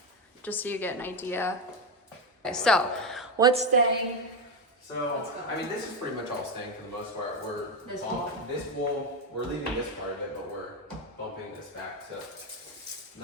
just so you get an idea. Okay, so what's staying? So, I mean, this is pretty much all staying for the most part. This wall, we're leaving this part of it, but we're bumping this back to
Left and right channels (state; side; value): normal; both; correlation 0.11